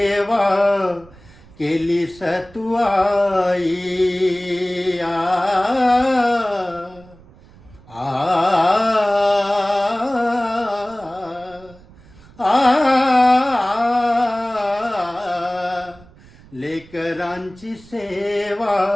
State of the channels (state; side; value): noise; right; rumble, 24 dB below the sound